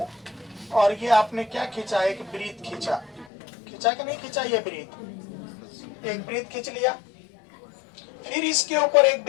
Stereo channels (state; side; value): drops out; right; at 3.2 s